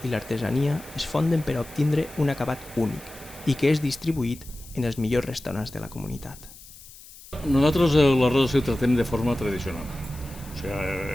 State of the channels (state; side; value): noise; left; hiss, 19 dB below the sound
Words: i l'artesania es fonden per a obtindre un acabat únic i que és distribuït en els millors restaurants de la comunitat. Nosaltres l'arròs el tratem de forma tradicional. O